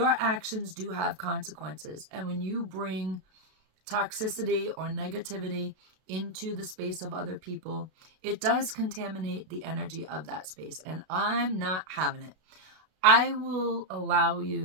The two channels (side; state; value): left; late; 32 ms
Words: actions do have consequences. And when you bring toxicity or negativity into the space of other people, it does contaminate the energy of that space. And I'm not having it. I will allow